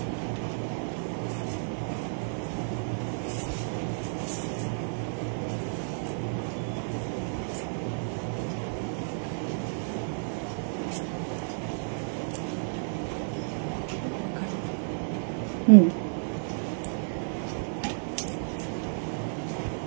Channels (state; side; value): silent; left; digital silence